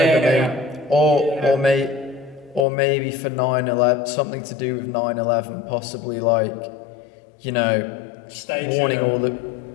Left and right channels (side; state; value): right; drops out; at 2.7 s